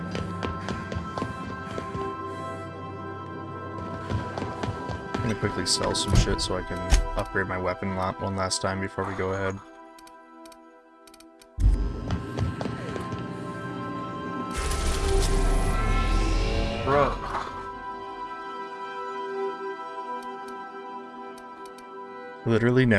I'm gonna quickly sell some shit so I can upgrade my weapon one last time before we go ahead. Bro. Literally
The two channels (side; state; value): both; identical; correlation 1.00